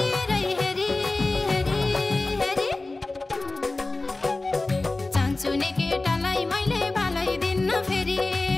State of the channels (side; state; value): right; quieter; 3.2 dB